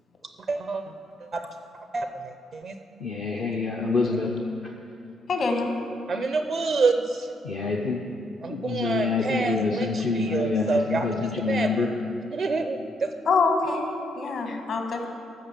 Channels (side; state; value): both; normal; correlation 0.73